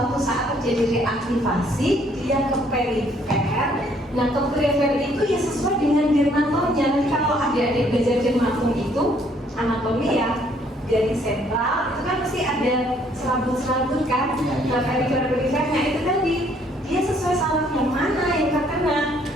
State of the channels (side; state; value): both; normal; correlation 0.65